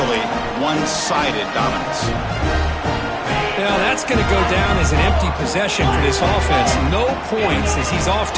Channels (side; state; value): both; identical; correlation 1.00